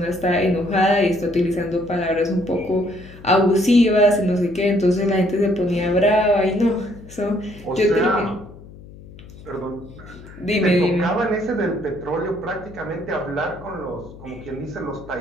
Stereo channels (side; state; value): left; noise; hum, 18 dB below the sound